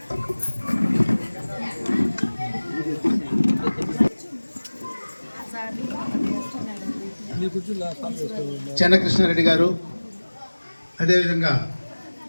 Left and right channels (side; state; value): both; inverted; correlation -1.00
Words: Chennakrishna Reddy గారు, అదేవిధంగా